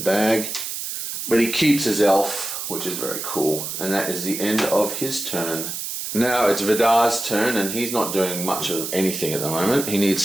But he keeps his elf, which is very cool. And that is the end of his turn. Now it's Vidar's turn, and he's not doing much of anything at the moment. He needs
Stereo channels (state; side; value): noise; right; hiss, 5 dB below the sound